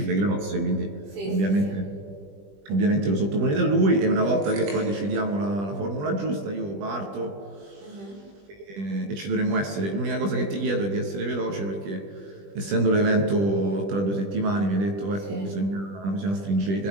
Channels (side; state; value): left; late; 20 ms